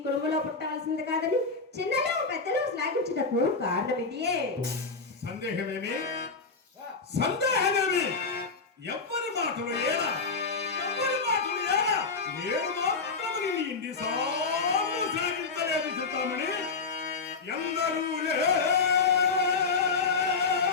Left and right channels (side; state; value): right; quieter; 4.5 dB